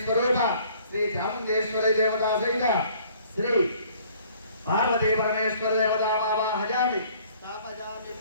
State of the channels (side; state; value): both; inverted; correlation -0.57